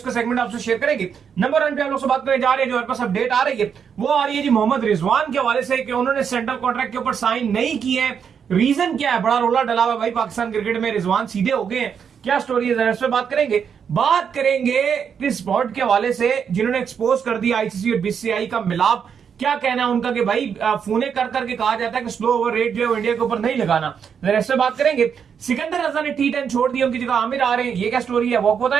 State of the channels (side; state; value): left; quieter; 7.2 dB